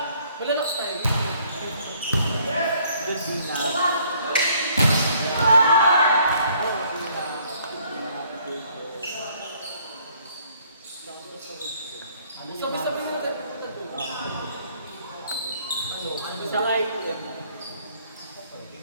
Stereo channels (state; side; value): inverted; both; correlation -0.63